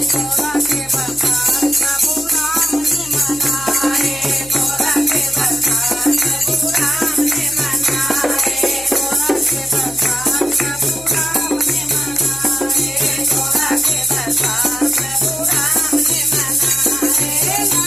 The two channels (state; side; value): noise; left; hum, 21 dB below the sound